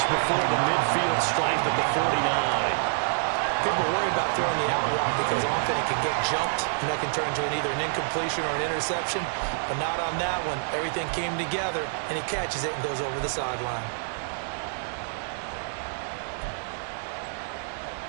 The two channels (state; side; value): silent; left; digital silence